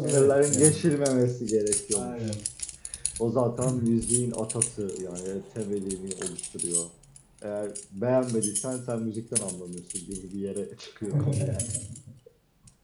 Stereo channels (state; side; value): identical; both; correlation 1.00